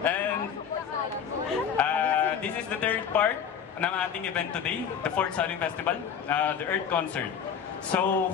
And, this is the third part ng ating event today, the Fourth Saling Festival, the Earth Concert. So,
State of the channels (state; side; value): quieter; right; 7.7 dB